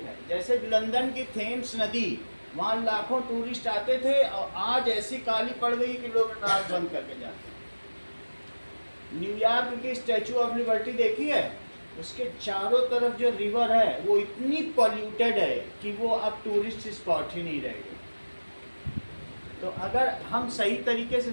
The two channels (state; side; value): inverted; both; correlation -1.00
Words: है। जैसे लंदन की थेम्स नदी, वहाँ लाखों टूरिस्ट आते थे और आज ऐसी काली पड़ गई कि लोग नाक बंद करके जाते हैं। न्यूयॉर्क की स्टैचू ऑफ लिबर्टी देखी है? उसके चारों तरफ जो रिवर है वो इतनी पॉल्यूटेड है कि वो अब टूरिस्ट स्पॉट ही नहीं रहेगी। तो अगर हम सही तरीके से